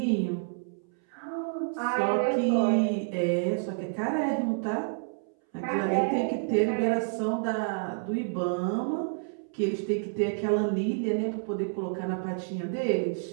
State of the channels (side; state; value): left; silent; 59 dB below the other